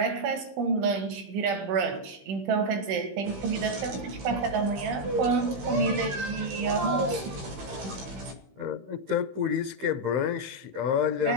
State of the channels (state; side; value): late; left; 15 ms